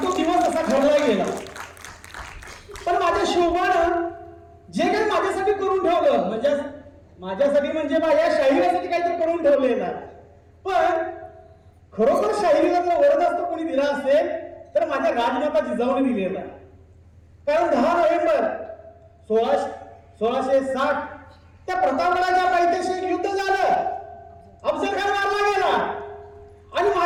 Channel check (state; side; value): identical; both; correlation 1.00